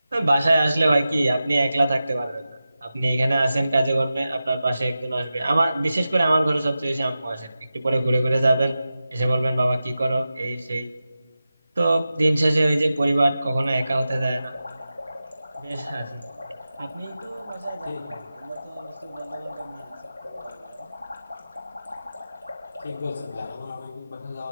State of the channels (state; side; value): inverted; both; correlation -0.93